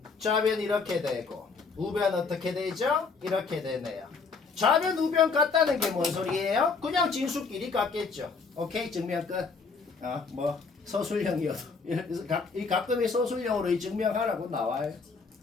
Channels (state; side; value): quieter; right; 4.7 dB